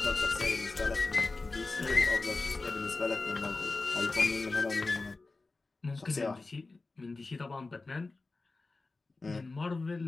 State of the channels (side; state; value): right; quieter; 3.6 dB